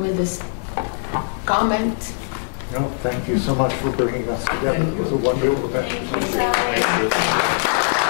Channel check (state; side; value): silent; right; 56 dB below the other